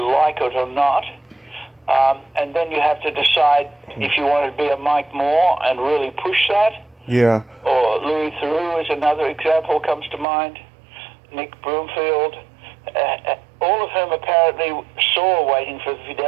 like it or not. And then you have to decide if you want to be a Mike Moore and really push that. Yeah. Or Louis Theroux is another example comes to mind. Nick Broomfield. All of whom apparently saw Waiting for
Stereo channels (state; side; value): drops out; left; at 10.2 s